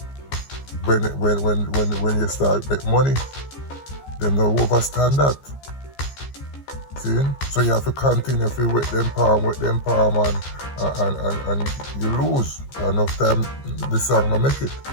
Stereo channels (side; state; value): right; late; 15 ms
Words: you start make money. Them don't overstand that. See? So you have to continue to with them palm and you lose. Enough time the song will make it.